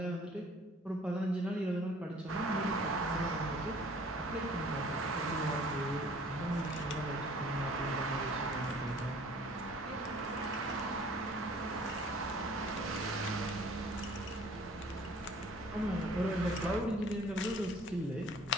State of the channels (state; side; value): normal; both; correlation 0.52